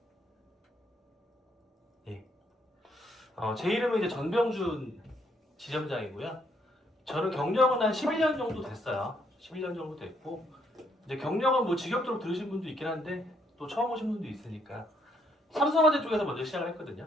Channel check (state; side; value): normal; both; correlation 0.71